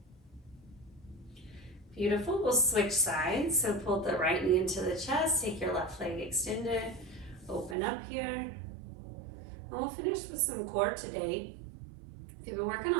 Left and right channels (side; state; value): left; drops out; at 7.8 s